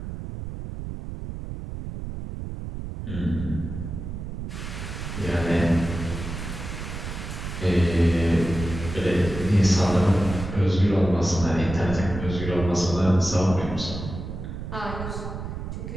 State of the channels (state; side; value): noise; right; rumble, 7 dB below the sound